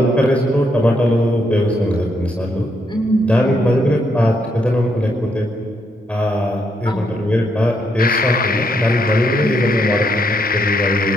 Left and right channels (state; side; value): normal; both; correlation 0.76